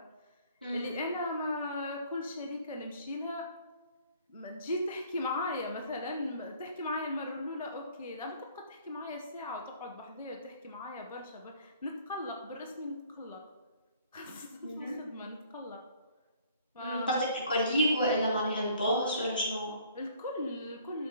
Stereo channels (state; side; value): inverted; both; correlation -0.57